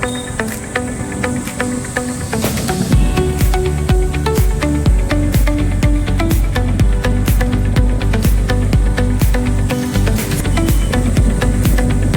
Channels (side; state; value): both; identical; correlation 1.00